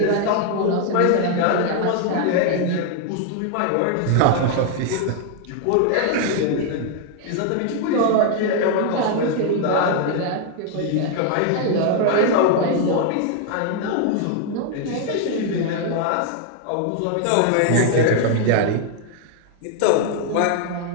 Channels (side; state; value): both; different; correlation 0.00